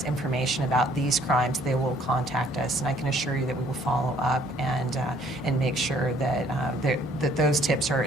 information about these crimes, they will contact us. And I can assure you that we will follow up and make sure that, that those tips are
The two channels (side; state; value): both; normal; correlation 0.61